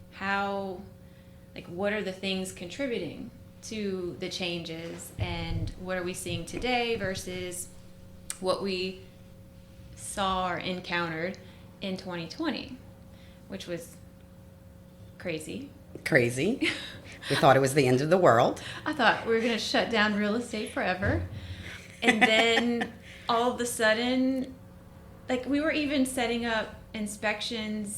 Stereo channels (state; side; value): identical; both; correlation 1.00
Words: What are the things contributing to the changes, and what are we seeing today versus what we saw or encountered in 2020, which was crazy. Crazy. We thought it was the end of the world. I thought we were going to shut down real estate forever. And then all of a sudden, we were even setting up